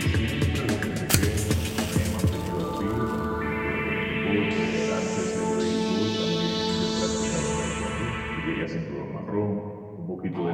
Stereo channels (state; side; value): identical; both; correlation 1.00